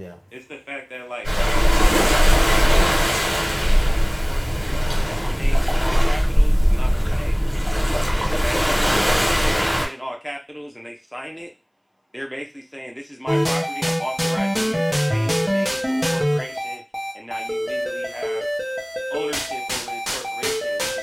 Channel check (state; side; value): identical; both; correlation 1.00